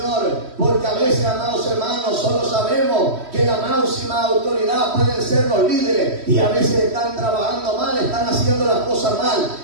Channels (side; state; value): left; late; 3.1 ms